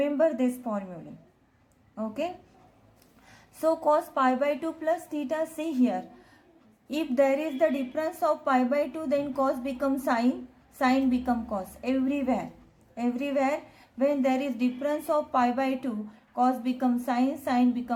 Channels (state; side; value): identical; both; correlation 1.00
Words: this formula. Okay, So cos pi by 2 plus theta, see here. If there is the difference of pi by 2, then cos becomes sin, sin become cos. Everywhere when there is difference of pi by 2, cos become sin, sin